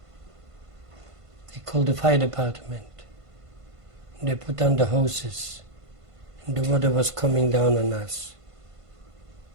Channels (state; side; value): late; left; 1.5 ms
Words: They called the fire department. They put on the hoses. And the water was coming down on us.